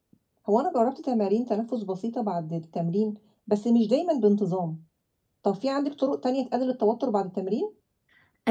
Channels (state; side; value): identical; both; correlation 1.00